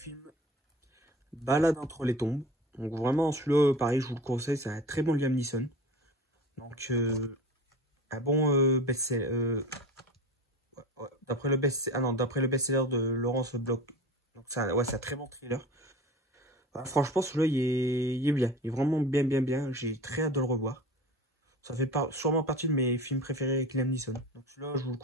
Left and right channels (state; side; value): normal; both; correlation 0.35